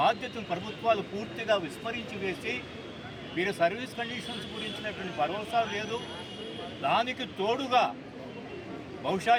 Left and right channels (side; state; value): both; identical; correlation 1.00